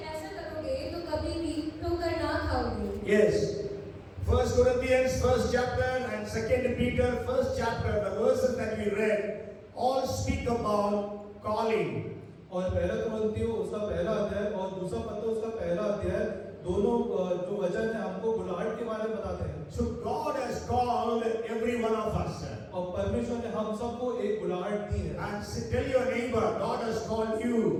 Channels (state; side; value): identical; both; correlation 1.00